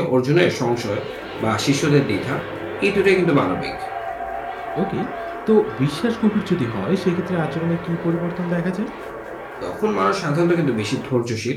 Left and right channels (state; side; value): identical; both; correlation 1.00